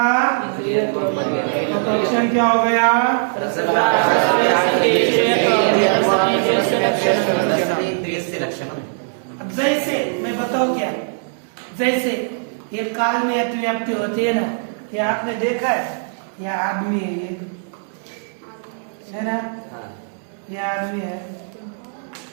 तो लक्षण क्या हो गया? अब जैसे मैं बताऊं क्या, जैसे ये काल में अतिव्याप्ति होती है ना, ये आपने देखा है, ये आदमी है, ये है ना, ये आदमी है,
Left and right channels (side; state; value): left; silent; digital silence